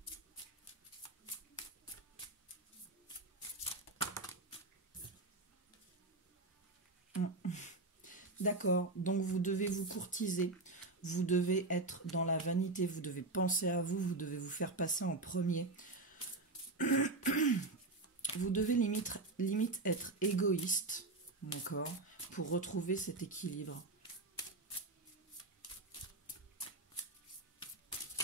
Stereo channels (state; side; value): quieter; left; 3.2 dB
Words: D'accord, donc vous devez vous courtiser, vous devez être dans la vanité, vous devez penser à vous, vous devez vous faire passer en premier. Vous devez limite être égoïste, d'accord, pour retrouver cet équilibre.